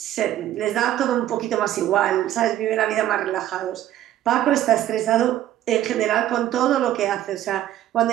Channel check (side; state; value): left; quieter; 12.6 dB